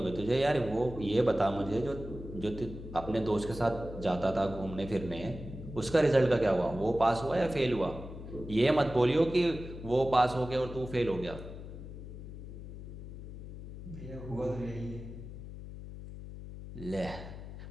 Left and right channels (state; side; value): noise; left; hum, 11 dB below the sound